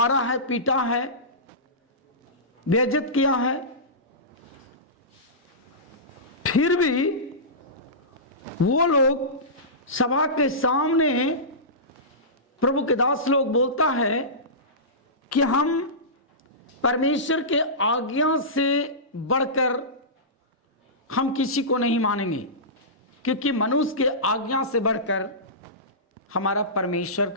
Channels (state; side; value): normal; both; correlation -0.19